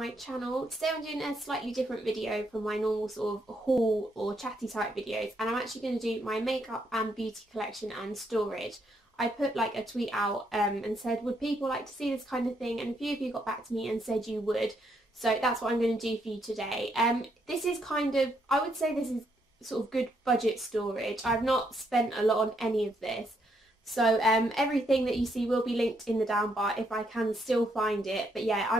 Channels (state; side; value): normal; both; correlation 0.75